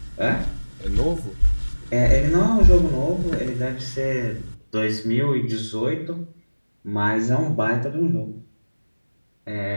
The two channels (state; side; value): inverted; both; correlation -1.00